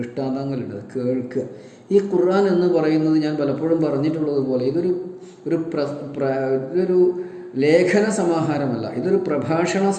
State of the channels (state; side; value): identical; both; correlation 1.00